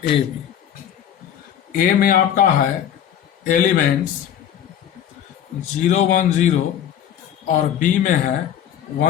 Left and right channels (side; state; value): right; quieter; 9.8 dB